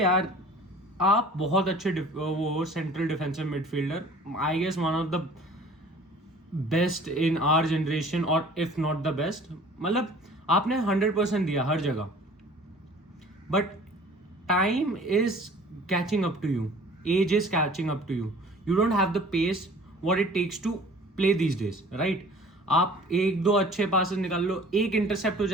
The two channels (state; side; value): normal; both; correlation 0.48